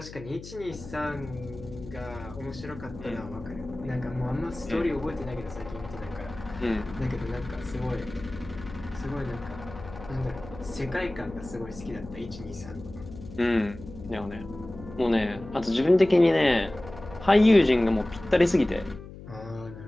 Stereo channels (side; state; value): left; noise; hum, 14 dB below the sound